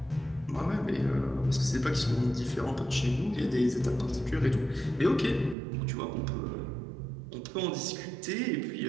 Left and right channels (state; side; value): drops out; left; at 5.6 s